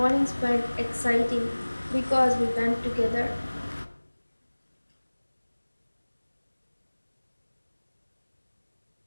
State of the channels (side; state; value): both; inverted; correlation -1.00